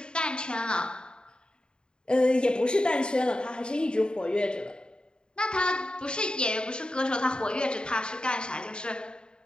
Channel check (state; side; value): late; right; 0.050 ms